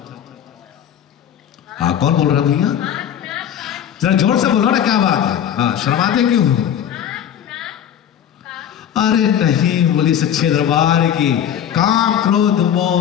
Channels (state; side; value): quieter; right; 9.6 dB